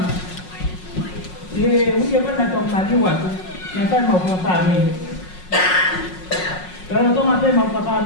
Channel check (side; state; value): right; late; 5.5 ms